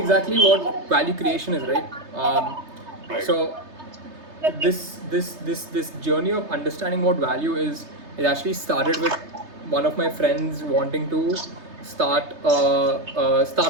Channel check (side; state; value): left; late; 3.3 ms